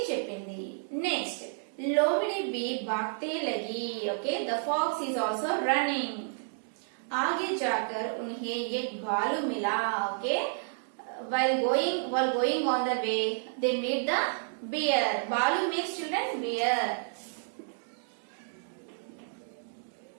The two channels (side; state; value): left; silent; digital silence